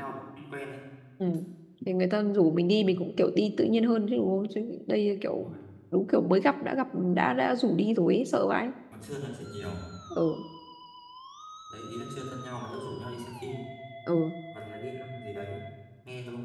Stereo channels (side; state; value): both; identical; correlation 1.00